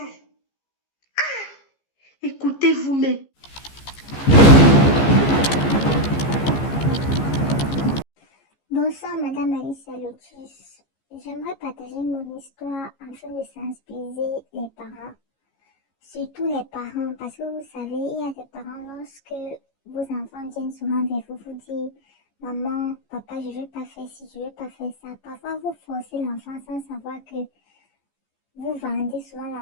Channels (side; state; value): right; late; 15 ms